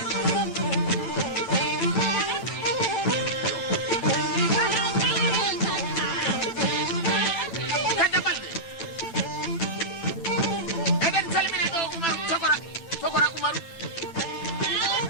Kadda Balde eɗen salmina ɗo Umaru Togora Umaru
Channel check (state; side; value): late; right; 9.0 ms